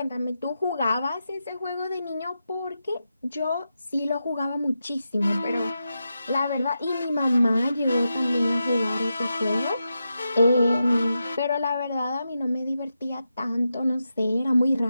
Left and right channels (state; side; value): inverted; both; correlation -0.88